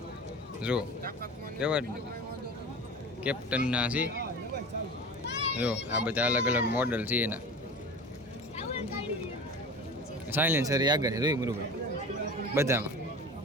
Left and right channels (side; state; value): both; normal; correlation 0.35